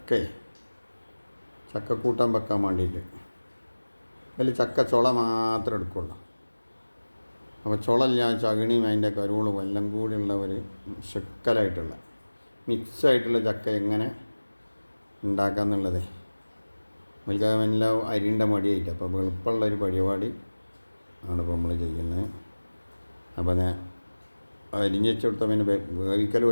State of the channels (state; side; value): inverted; both; correlation -1.00